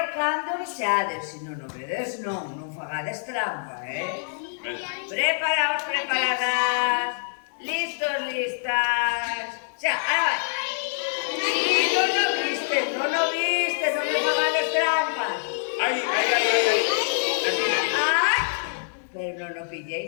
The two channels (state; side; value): silent; right; 61 dB below the other